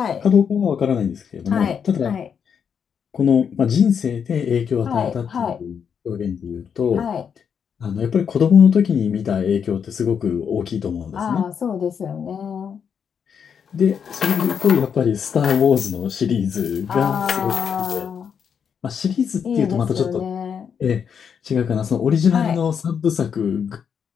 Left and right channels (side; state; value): right; quieter; 7.2 dB